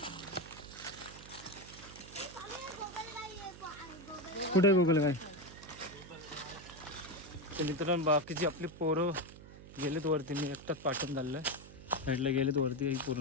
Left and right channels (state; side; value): noise; right; hum, 16 dB below the sound